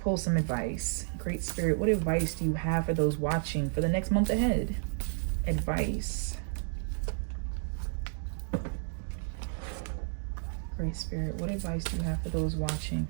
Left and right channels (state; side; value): silent; left; digital silence